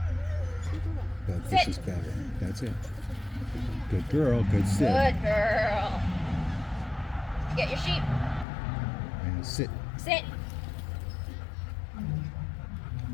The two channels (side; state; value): right; drops out; at 8.5 s